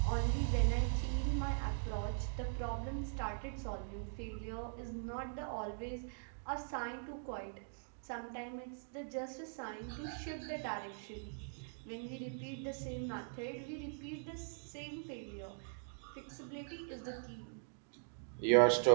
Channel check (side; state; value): left; silent; digital silence